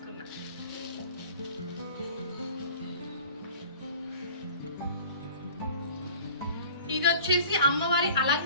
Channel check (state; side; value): inverted; both; correlation -0.44